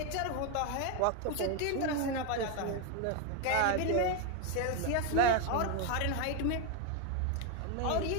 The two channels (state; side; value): different; both; correlation 0.01